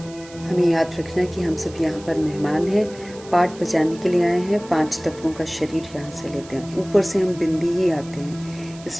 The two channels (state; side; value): noise; right; hiss, 20 dB below the sound